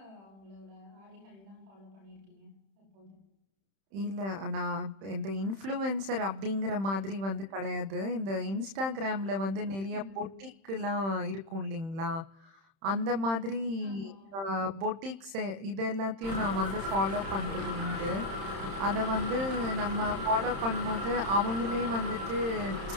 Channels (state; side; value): late; left; 31 ms